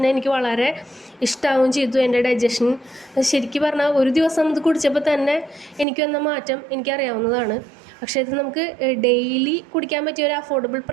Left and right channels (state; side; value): drops out; left; at 5.9 s